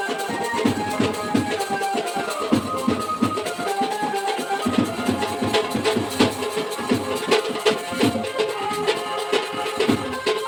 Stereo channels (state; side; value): identical; both; correlation 1.00